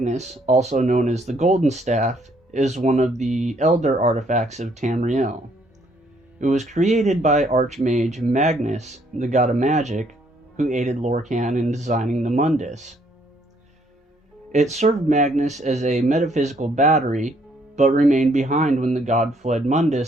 also known as the Golden Staff, is one of the elder artifacts of Tamriel. It was created by Archmage Magnus, the god of magic, who aided Lorkhan in designing the Mundus. It served Magnus as a metaphysical battery, but remained behind when the god fled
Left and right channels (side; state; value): both; normal; correlation 0.67